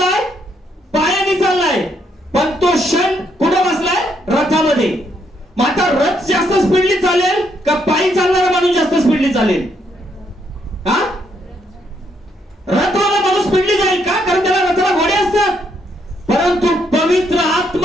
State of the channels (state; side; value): normal; both; correlation 0.74